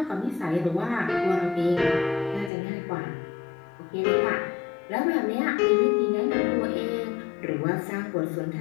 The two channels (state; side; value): drops out; right; at 2.5 s